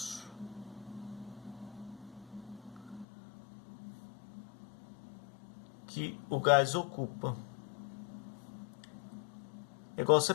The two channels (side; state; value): right; drops out; at 3.1 s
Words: que o gás ocupa. É igual você